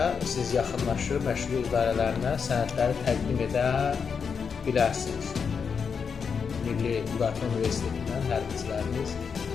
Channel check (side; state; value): right; quieter; 6.1 dB